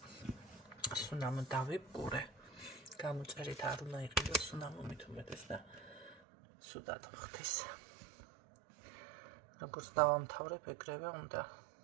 სუნამო დავიბგურე. გამოწერით არ უნდა იყიდოს სუნამო მით უმეტეს და სუდად ხთის. როგორც დავამთავრებ, ეგრევე უნდა.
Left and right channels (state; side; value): drops out; left; at 6.2 s